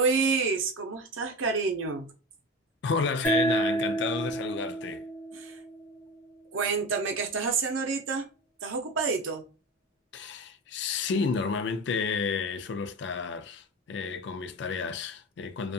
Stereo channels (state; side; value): normal; both; correlation 0.27